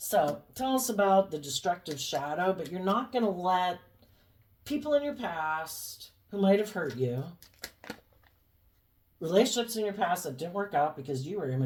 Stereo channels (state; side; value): identical; both; correlation 1.00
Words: tell us about the destructive shadow, but you're not going to let people in your past who might have hurt you, relationships in your past that didn't work out because you were